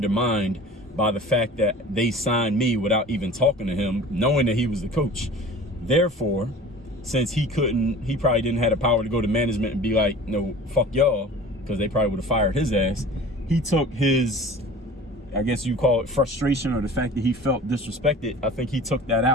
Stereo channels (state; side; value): normal; both; correlation 0.42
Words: by the fact that they signed me without even talking to him, knowing that he was the coach. Therefore, since he probably didn't have the power to go to management and be like, no, fuck y'all, because they probably would have fired his ass. He took his, I guess you call it frustration, or the fact that he felt disrespected. I think he took that